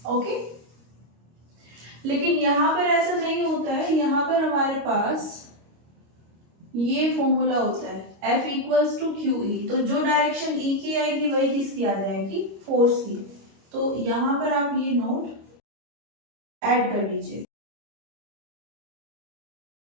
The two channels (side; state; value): left; late; 25 ms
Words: ओके, लेकिन यहां पर ऐसा नहीं होता है, यहां पर हमारे पास ये फॉर्मूला होता है F equals to q E. तो जो डायरेक्शन E की आएगी वही किसकी आ जाएगी, फोर्स की। तो यहां पर आप ये नोट ऐड कर लीजिए।